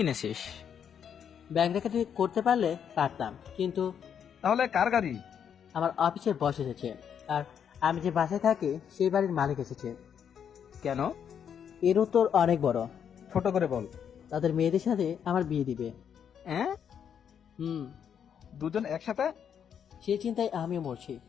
ব্যাংক ডাকাতি করতে পারলে পারতাম, কিন্তু। তাহলে কার গাড়ি? আমার অফিসের বস এসেছে, আর আমি যে বাসায় থাকি সেই বাড়ির মালিক এসেছে। কেন? এর উত্তর অনেক বড়। ছোট করে বল। তাদের মেয়েদের সাথে আমার বিয়ে দিবে। দুজন একসাথে? সেই চিন্তায় আমিও মরছি।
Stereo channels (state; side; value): quieter; right; 8.2 dB